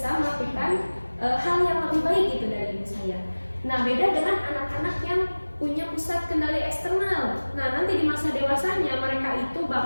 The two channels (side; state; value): both; inverted; correlation -1.00